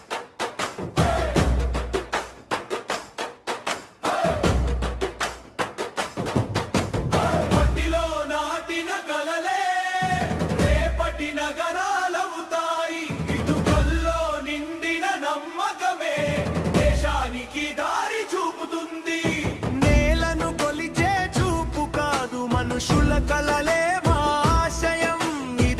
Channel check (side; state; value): both; identical; correlation 1.00